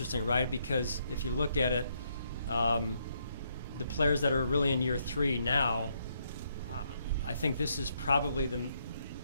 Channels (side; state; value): both; inverted; correlation -0.74